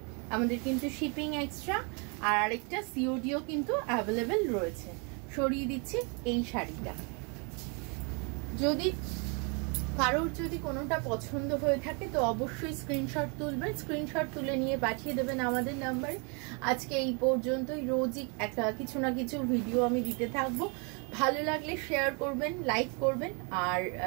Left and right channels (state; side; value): quieter; left; 34.7 dB